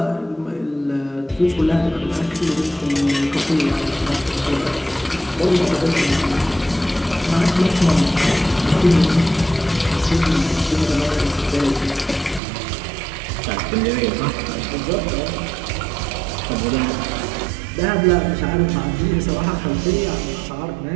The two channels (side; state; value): left; drops out; at 12.4 s